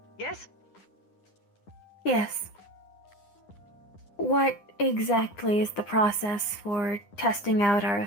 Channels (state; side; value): late; right; 9.9 ms